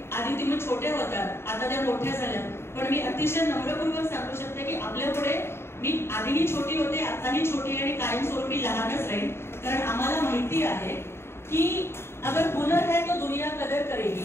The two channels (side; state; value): right; late; 0.12 ms